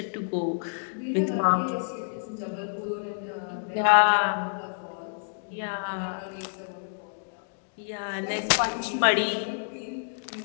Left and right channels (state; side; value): silent; right; digital silence